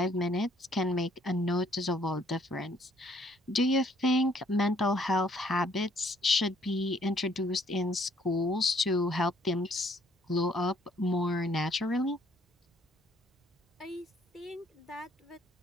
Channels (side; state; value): both; normal; correlation 0.64